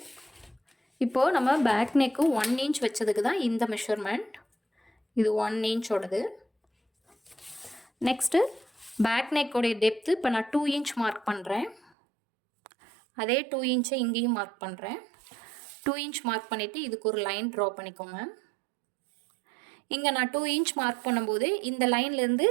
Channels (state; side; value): drops out; left; at 11.9 s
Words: இப்போது நம்ம பேக் நெக்கு 1 இன்ச் வச்சதுக்கு தான் இந்த மெஷர்மெண்ட். இது 1 இன்ச்சோடது. நெக்ஸ்ட்டு பேக் நெக்கோடைய டெப்த்து இப்போ நான் 2 இன்ச் மார்க் பண்ணுறேன். அதே 2 இன்ச்சை இங்கேயும் மார்க் பண்ணுறேன். 2 இன்ச் மார்க் பண்ணிவிட்டு இதுக்கு ஒரு லைன் ட்ரா பண்ணிக்கோங்க. இங்கே நான் 2 இன்ச் மார்க் பண்ணும்போது இந்த லைன்லேருந்து